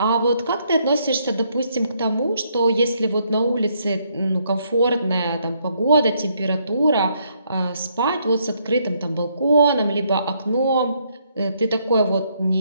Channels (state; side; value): inverted; both; correlation -0.72